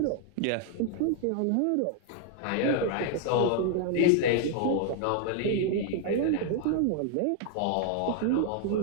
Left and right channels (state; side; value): different; both; correlation 0.00